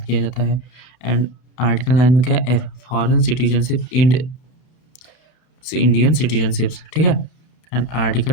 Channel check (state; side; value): late; right; 31 ms